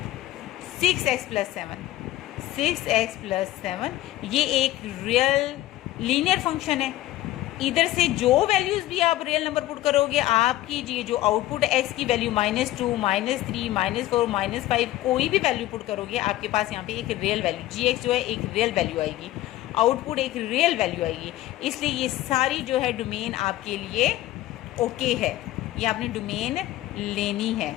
6x + 7, 6x + 7, ये एक रियल लीनियर फंक्शन है। इधर से जो वैल्यूज़ भी आप रियल नंबर पुट करोगे, आपकी ये जो आउटपुट x की वैल्यू -2 -3 -4 -5 कोई भी वैल्यू पुट करोगे, आपके पास यहाँ पे एक रियल वैल्यू gx जो है एक रियल वैल्यू आएगी, आउटपुट एक रियल वैल्यू आएगी। इसलिए ये सारी जो है डोमेन आपके लिए ओके है, ये आपने डोमेन लेनी है,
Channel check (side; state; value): right; quieter; 15.5 dB